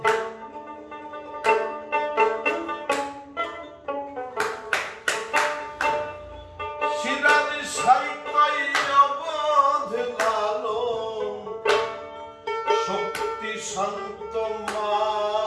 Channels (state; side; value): identical; both; correlation 1.00